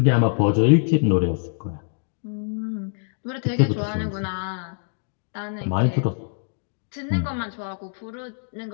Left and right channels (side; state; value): right; silent; 62 dB below the other